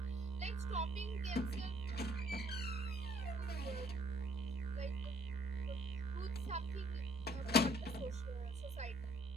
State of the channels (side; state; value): both; normal; correlation 0.62